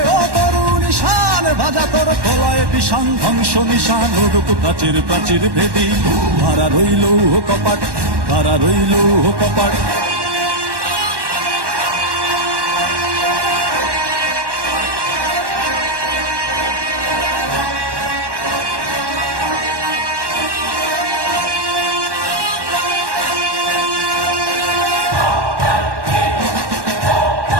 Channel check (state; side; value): late; left; 1.1 ms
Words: ও তরুণ ঈশান, বাজা তোর প্রলয় বিষান, ধ্বংস নিশান উড়ুক প্রাচীর প্রাচীর ভেদী। হারা রইল কপাট, হারা রইল কপাট।